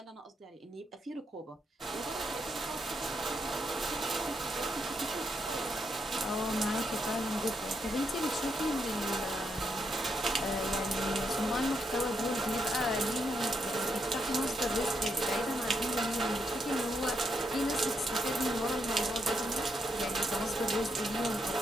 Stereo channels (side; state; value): both; normal; correlation 0.79